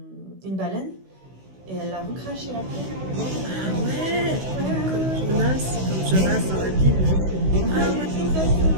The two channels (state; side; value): late; left; 16 ms